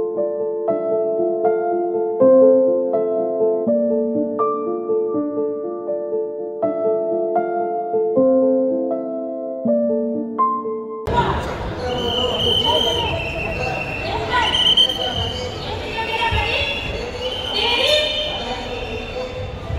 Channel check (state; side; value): identical; both; correlation 1.00